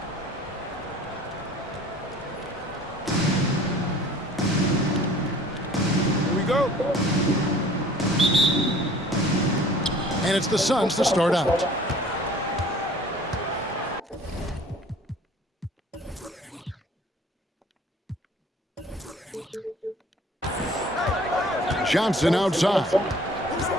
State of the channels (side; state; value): both; normal; correlation 0.50